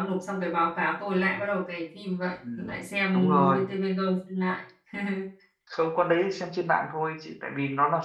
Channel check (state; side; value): identical; both; correlation 1.00